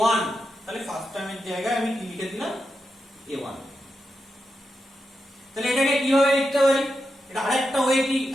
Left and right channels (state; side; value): normal; both; correlation 0.87